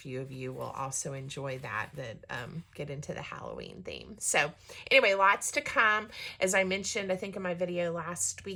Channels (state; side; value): identical; both; correlation 1.00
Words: of you will also enjoy that get into the Halloween theme. So anyway, lots to come. As I mentioned, I think in my video last